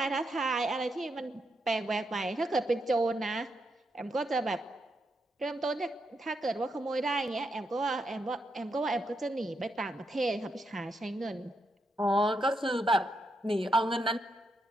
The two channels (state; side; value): normal; both; correlation 0.82